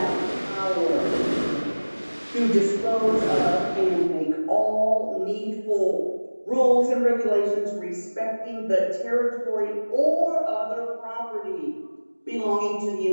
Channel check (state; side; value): inverted; both; correlation -1.00